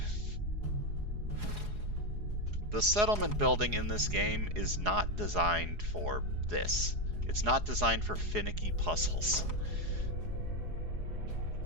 settlement building in this game is not designed for this. It's not designed for finicky puzzles.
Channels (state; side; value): late; left; 4.8 ms